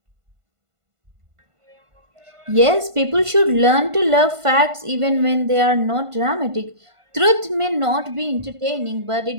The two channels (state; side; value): late; left; 1.5 ms